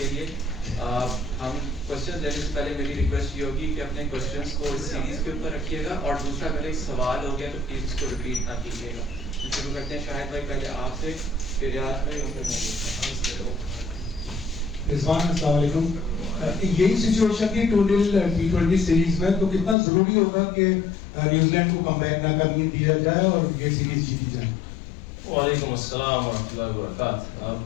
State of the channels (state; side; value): drops out; right; at 19.8 s